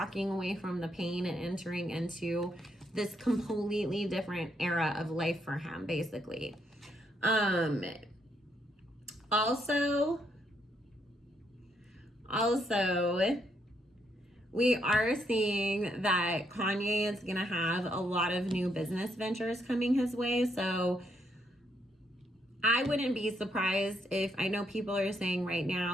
away from the pain and entering into this completely different era of life for him, basically. Also, we are seeing that Kanye is going to have a lot of new business ventures coming his way. So I wouldn't be surprised if, I know people are saying right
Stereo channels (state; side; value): normal; both; correlation 0.75